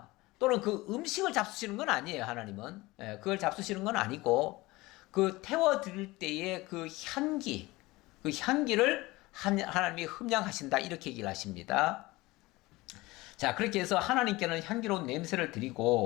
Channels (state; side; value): quieter; right; 20.7 dB